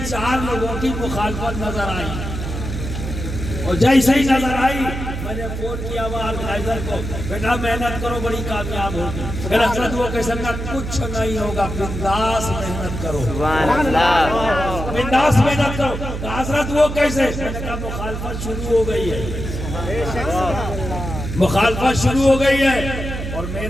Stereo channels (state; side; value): noise; right; hum, 6 dB below the sound